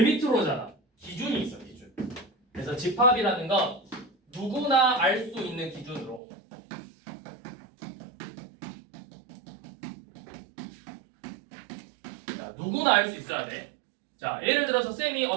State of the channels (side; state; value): left; drops out; at 6.2 s